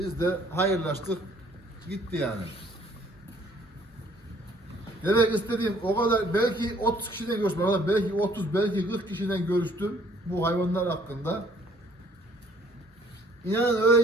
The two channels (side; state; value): both; normal; correlation 0.60